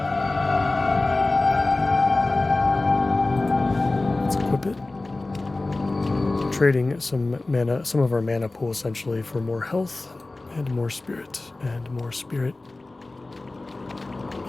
Let's equip it. Trading some of our mana pool essentially for more health and more spirit. And more spirit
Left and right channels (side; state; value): right; quieter; 3.1 dB